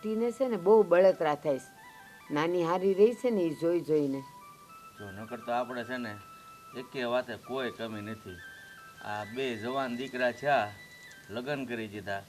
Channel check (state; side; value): identical; both; correlation 1.00